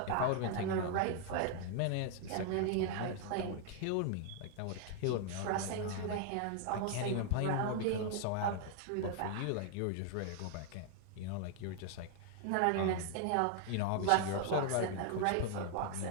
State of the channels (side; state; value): both; different; correlation 0.00